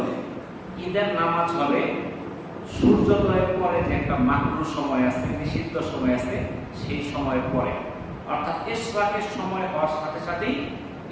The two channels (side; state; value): both; identical; correlation 1.00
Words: ঈদের নামাজ হবে সূর্যোদয়ের পরে, যে একটা মাকরুহ সময় আছে, নিষিদ্ধ সময় আছে, সেই সময়ের পরে, অর্থাৎ ইশরাকের সময় হওয়ার সাথে সাথেই